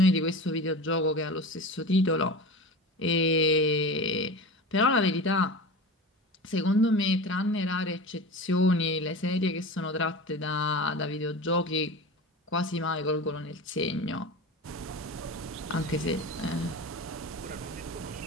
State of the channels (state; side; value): normal; both; correlation 0.31